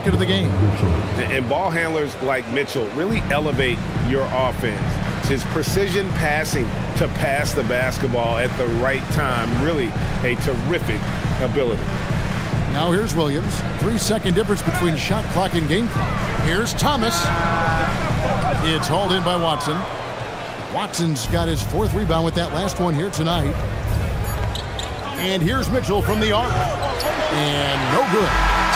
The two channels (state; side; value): identical; both; correlation 1.00